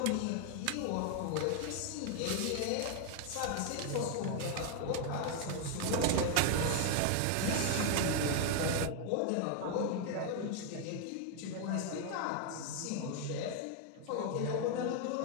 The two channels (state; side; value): different; both; correlation 0.00